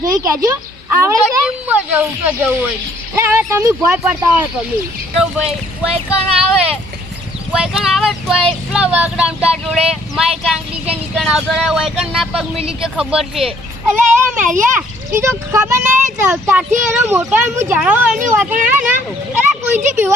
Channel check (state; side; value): normal; both; correlation 0.62